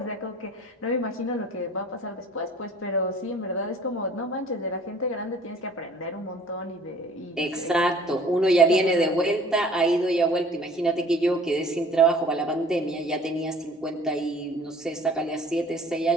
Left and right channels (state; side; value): normal; both; correlation 0.51